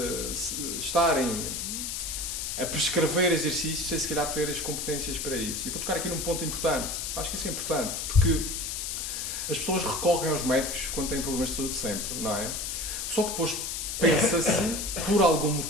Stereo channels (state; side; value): noise; left; hiss, 3 dB below the sound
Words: estarem a prescrever exercícios sem se calhar ter as competências para isso. E vou tocar aqui num ponto importante. Acho que isso é importante, porque as pessoas recorrem aos médicos quando têm problemas de saúde sempre, não é? Só que depois pensa-se, por algum